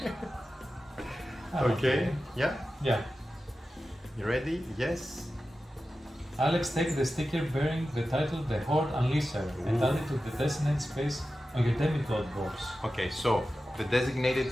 Okay, yeah? Yeah. You ready? Yes. Alex, take the sticker bearing the title The Horde Unleasher and add it to the designated space on your demigod box. Okay, so the designated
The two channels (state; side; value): normal; both; correlation 0.93